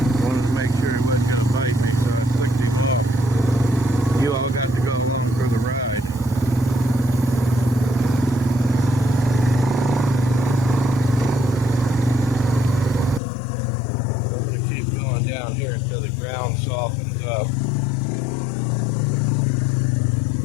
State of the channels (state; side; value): drops out; right; at 13.2 s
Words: Wanted to make sure it wasn't going to bite me, so I flicked him off. You all got to go along for the ride. So I'm going to keep going down here until the ground softens up.